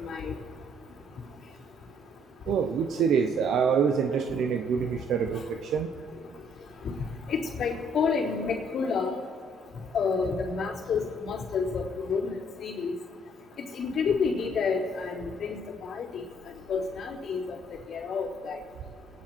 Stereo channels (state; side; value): normal; both; correlation 0.64